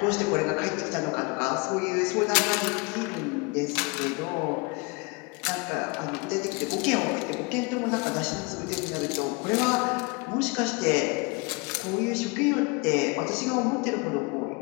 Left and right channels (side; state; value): right; quieter; 28.1 dB